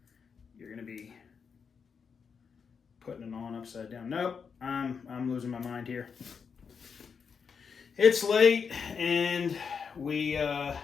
you're going to be putting it on upside down. Nope, I'm losing my mind here. It's late, and we,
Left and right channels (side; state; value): right; quieter; 6.1 dB